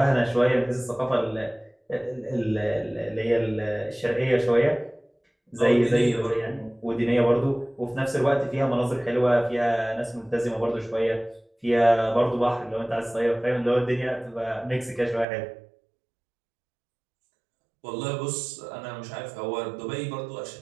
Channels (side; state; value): left; drops out; at 15.2 s